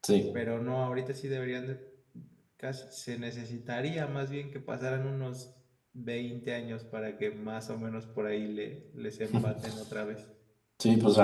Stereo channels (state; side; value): identical; both; correlation 1.00